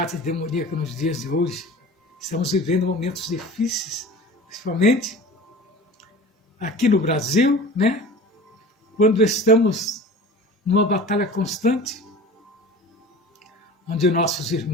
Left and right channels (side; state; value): both; normal; correlation 0.40